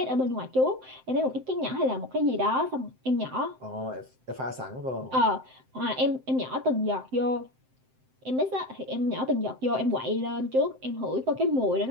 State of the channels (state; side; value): late; left; 7.7 ms